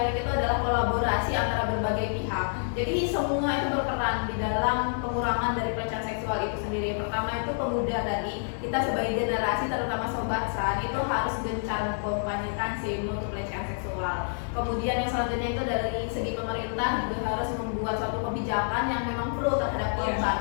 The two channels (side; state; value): right; silent; 59 dB below the other